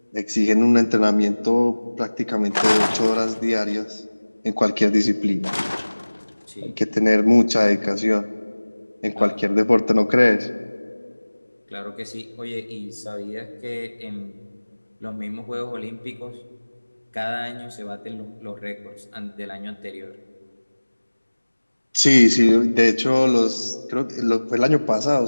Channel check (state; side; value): inverted; both; correlation -1.00